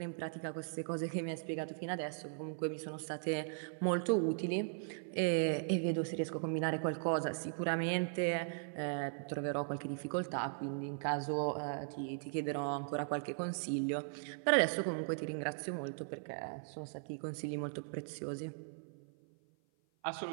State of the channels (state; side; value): silent; left; 52 dB below the other